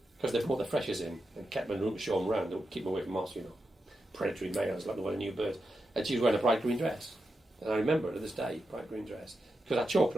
because they brought the freshers in and kept them in the room to show them around, to keep them away from us, predatory males, like the one new birds. And she was wearing a bright green dress. And I remember her to this day, bright green dress. Because I chalked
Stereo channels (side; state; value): both; normal; correlation 0.88